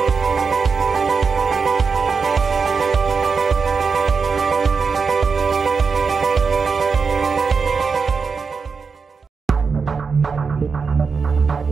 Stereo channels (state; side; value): quieter; left; 5.2 dB